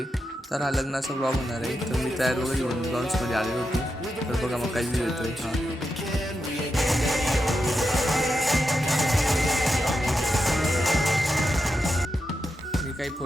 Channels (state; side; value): normal; both; correlation 0.87